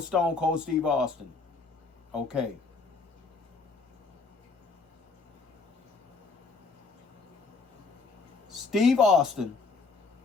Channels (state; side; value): quieter; right; 4.1 dB